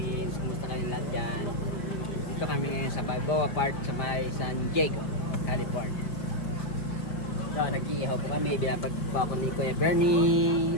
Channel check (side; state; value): right; late; 5.0 ms